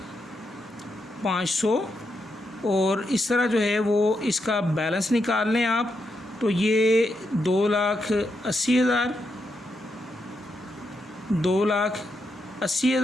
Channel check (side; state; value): both; normal; correlation 0.82